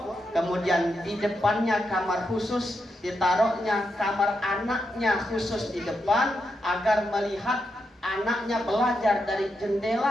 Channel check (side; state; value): both; normal; correlation 0.84